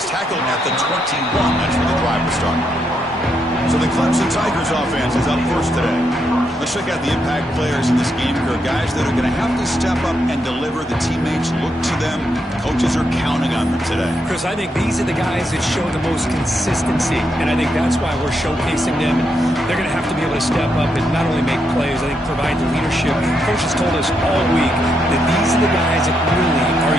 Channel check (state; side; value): normal; both; correlation 0.80